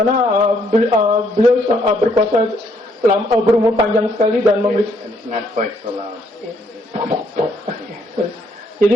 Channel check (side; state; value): both; normal; correlation 0.70